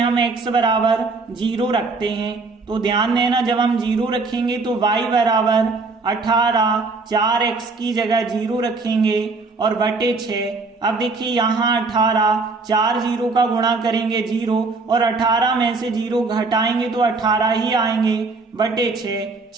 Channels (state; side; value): quieter; left; 3.9 dB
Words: x बराबर 0 रखते हैं, तो ध्यान देना जब हम 0 रखेंगे तो y बराबर 18, 4x की जगह 0 रखेंगे और बटे 6। अब देखिए यहाँ 18, 4 0 का गुणा करेंगे 0, और 18 में से 0 घटाएंगे तो 18 ही आएंगे, बटे